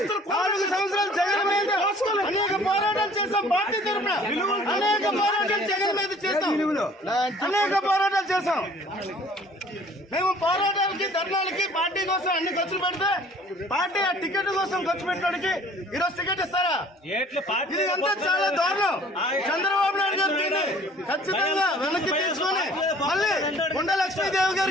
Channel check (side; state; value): both; normal; correlation 0.53